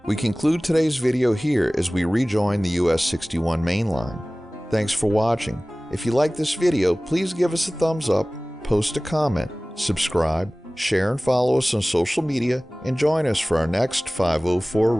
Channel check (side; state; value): both; normal; correlation 0.98